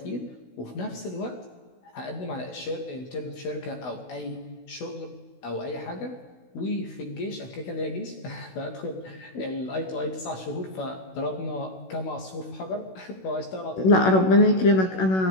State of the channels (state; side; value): late; right; 16 ms